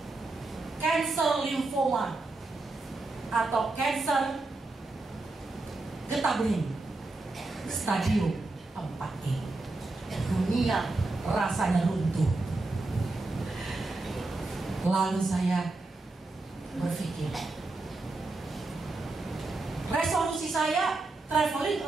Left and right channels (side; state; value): left; quieter; 3.2 dB